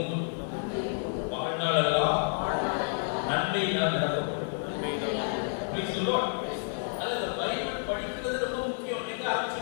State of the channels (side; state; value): right; silent; 58 dB below the other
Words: வாழ்நாளெல்லாம் நன்மையினால் நிரப்பப்படும். Price the Lord. அந்த பைபிள் படிக்கிறது ரொம்ப முக்கியம். நீங்க